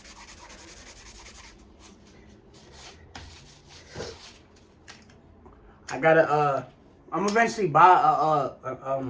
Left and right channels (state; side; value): identical; both; correlation 1.00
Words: I gotta, I'm eventually buy a